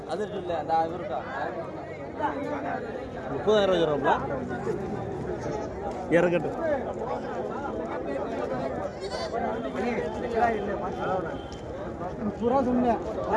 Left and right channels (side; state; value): both; identical; correlation 1.00